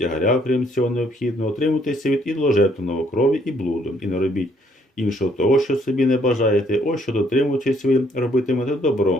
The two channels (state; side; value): normal; both; correlation 0.67